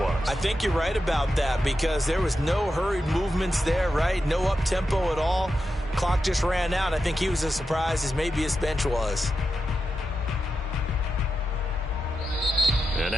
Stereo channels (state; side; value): normal; both; correlation 0.90